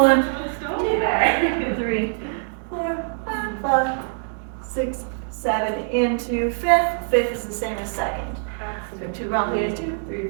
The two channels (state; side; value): silent; left; digital silence